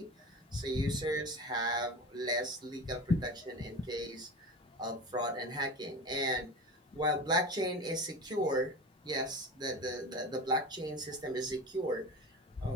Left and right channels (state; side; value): normal; both; correlation 0.32